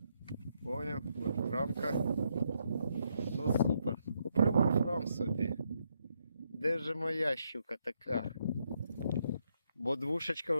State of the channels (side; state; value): both; inverted; correlation -0.77